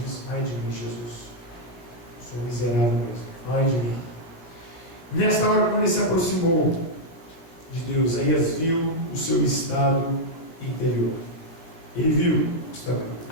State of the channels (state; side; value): late; right; 17 ms